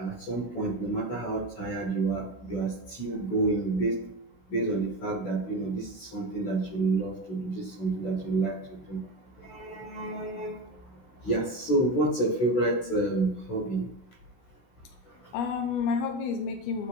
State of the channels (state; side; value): late; right; 16 ms